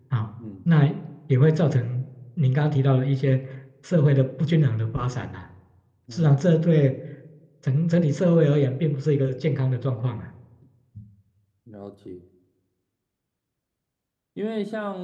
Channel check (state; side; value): identical; both; correlation 1.00